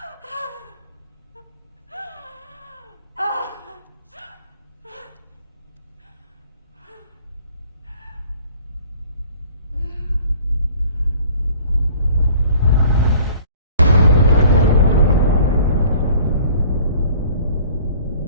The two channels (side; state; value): both; inverted; correlation -0.52